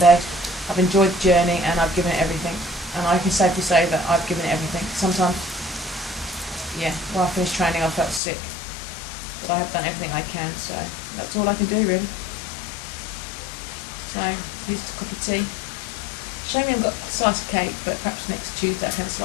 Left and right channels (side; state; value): right; drops out; at 8.2 s